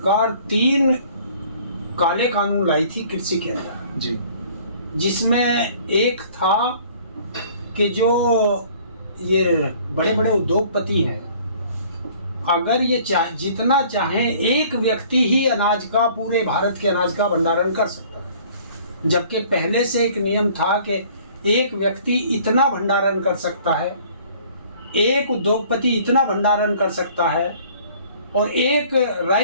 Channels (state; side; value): inverted; both; correlation -0.54